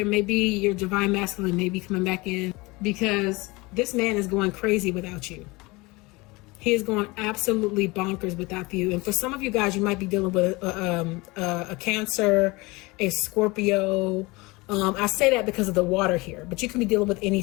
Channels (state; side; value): quieter; right; 23.8 dB